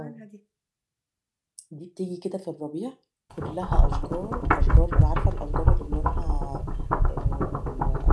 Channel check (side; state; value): both; identical; correlation 1.00